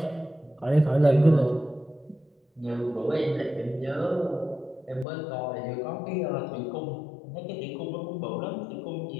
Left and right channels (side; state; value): right; drops out; at 5.1 s